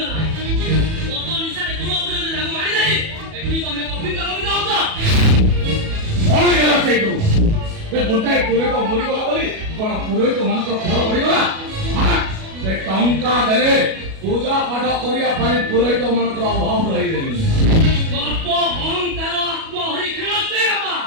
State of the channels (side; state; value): left; late; 37 ms